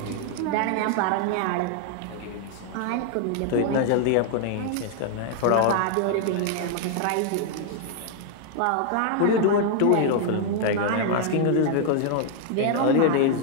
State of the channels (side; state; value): both; different; correlation 0.00